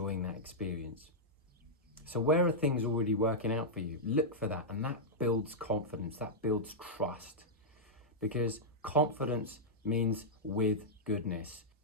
that experience. So where are things already working out for you? Look for that, and that builds confidence, that builds trust. Because confidence means with goodness,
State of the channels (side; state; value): both; normal; correlation -0.07